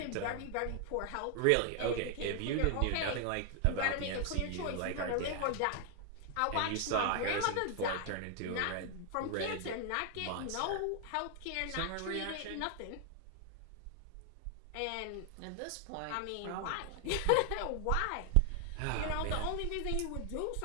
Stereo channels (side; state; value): both; different; correlation 0.00